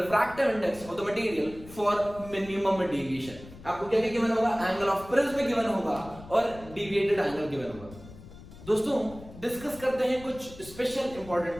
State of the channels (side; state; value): left; noise; rumble, 17 dB below the sound